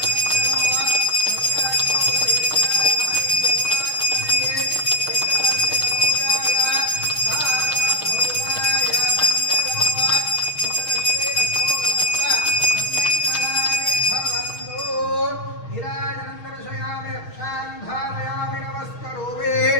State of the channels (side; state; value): right; late; 6.4 ms